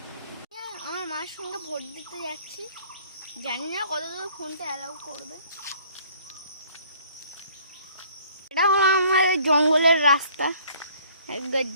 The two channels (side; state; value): both; inverted; correlation -0.57